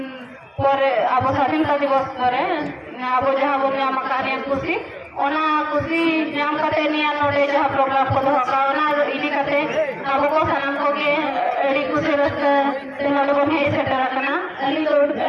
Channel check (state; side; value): identical; both; correlation 1.00